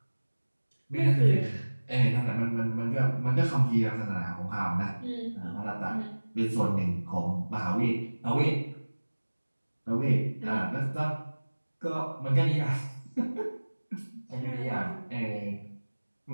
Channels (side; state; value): both; inverted; correlation -1.00